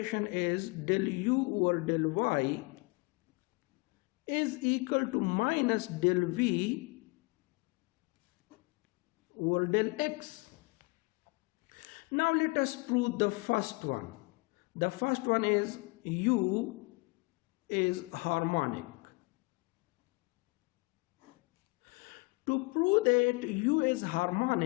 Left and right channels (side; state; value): right; quieter; 27.5 dB